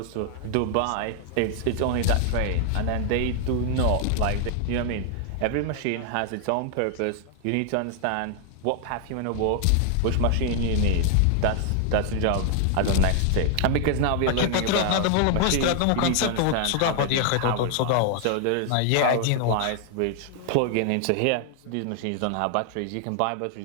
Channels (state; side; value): different; both; correlation 0.00